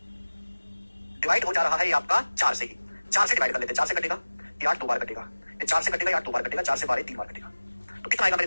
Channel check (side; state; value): both; inverted; correlation -1.00